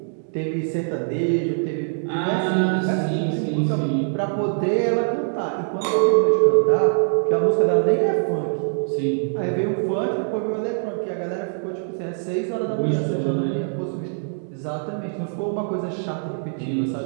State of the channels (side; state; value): left; silent; digital silence